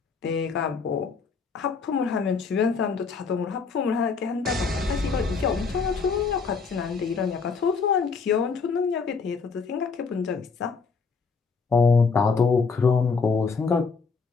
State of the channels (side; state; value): right; quieter; 5.0 dB